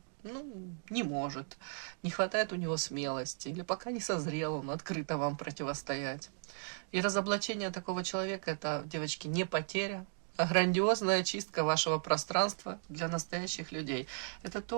не может, не хватает у него смелости, или пока не созрел он открыто вам противостоять. И разоблачение такого человека – это, девочки, не потеря, а грандиозная чистка вашего пространства для настоящих людей. Это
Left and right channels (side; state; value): left; silent; 54 dB below the other